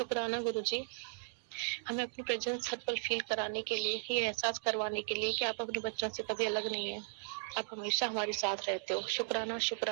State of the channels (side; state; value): left; silent; digital silence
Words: गुरु जी, हमें अपनी प्रेजेंस हर पल फील कराने के लिए, ये एहसास करवाने के लिए कि आप अपने बच्चों से कभी अलग नहीं है, आप हमेशा हमारे साथ रहते हो। शुक्राना